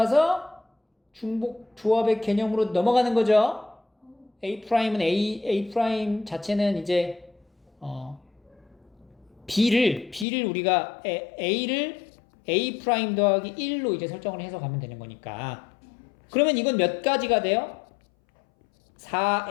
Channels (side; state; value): right; drops out; at 10.2 s